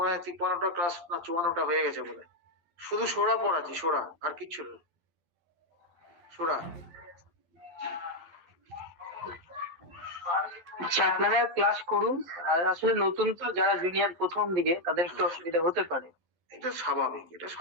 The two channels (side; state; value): left; late; 11 ms